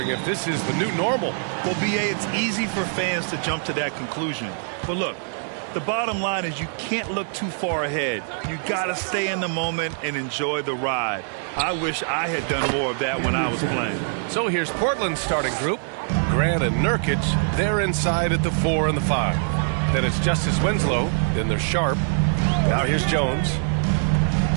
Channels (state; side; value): silent; left; digital silence